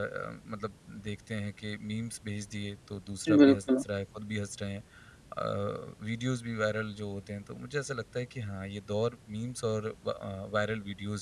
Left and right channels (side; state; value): both; identical; correlation 1.00